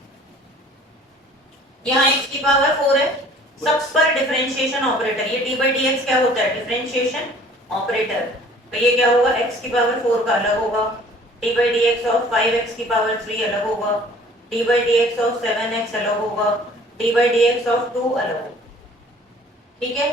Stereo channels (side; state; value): both; normal; correlation 0.52